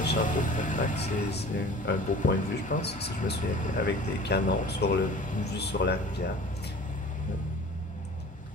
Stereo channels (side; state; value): both; normal; correlation 0.43